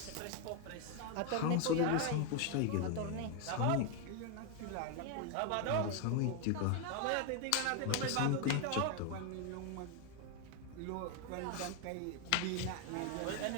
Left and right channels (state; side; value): different; both; correlation 0.01